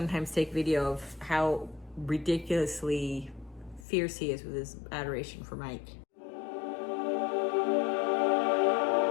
take video of how ridiculously fierce he is with his adoration for Mike.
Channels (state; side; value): drops out; right; at 3.9 s